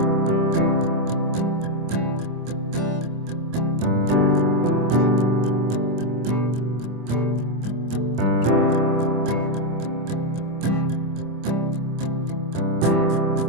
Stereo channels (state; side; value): late; left; 25 ms